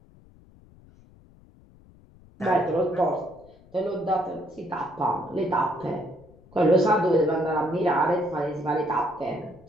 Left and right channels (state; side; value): noise; left; rumble, 26 dB below the sound